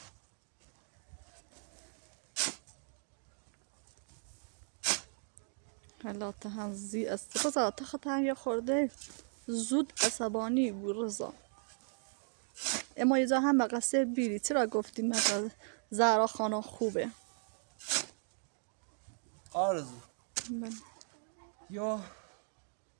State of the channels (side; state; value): left; silent; 53 dB below the other